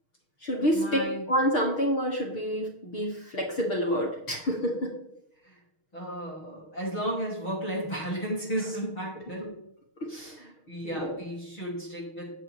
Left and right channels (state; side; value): late; right; 6.4 ms